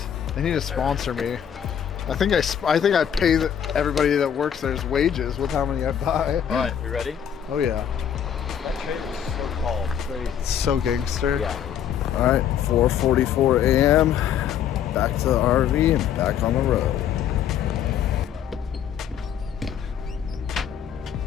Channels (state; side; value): quieter; right; 9.1 dB